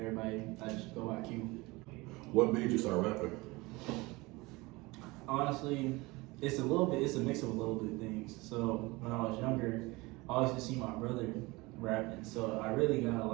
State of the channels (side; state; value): left; quieter; 23.0 dB